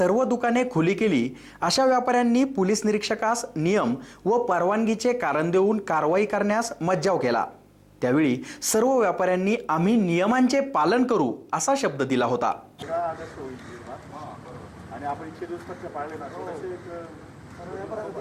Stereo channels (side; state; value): both; identical; correlation 1.00